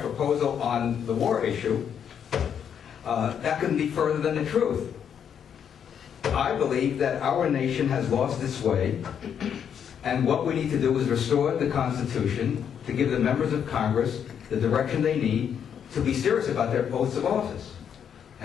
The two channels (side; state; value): right; quieter; 8.2 dB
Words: proposal on the war issue, that couldn't be further than the truth. I believe that our nation has lost its way, and what we need to do is restore the Constitution to give the members of Congress the direction they need to be serious about their oaths of office.